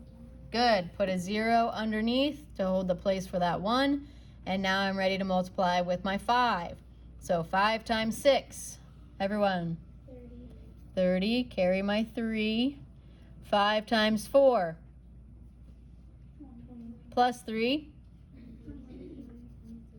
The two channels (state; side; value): identical; both; correlation 1.00